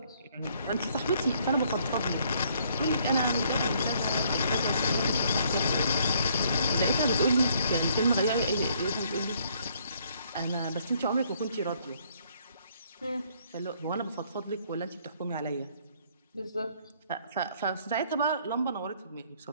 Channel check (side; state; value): both; inverted; correlation -0.65